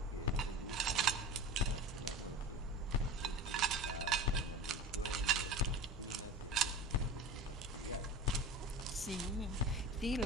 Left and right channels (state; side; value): normal; both; correlation 0.32